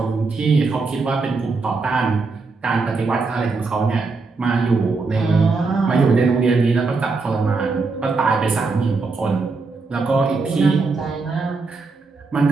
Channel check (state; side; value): quieter; left; 4.1 dB